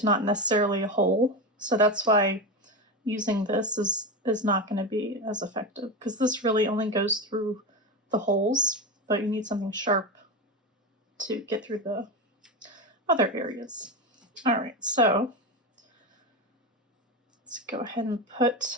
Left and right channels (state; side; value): normal; both; correlation 0.18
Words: not necessarily a hole. So that's why using this is not going to be as effective, because this really only goes through the holes, but you need something sharp to get through the other areas. All right, so let's go ahead and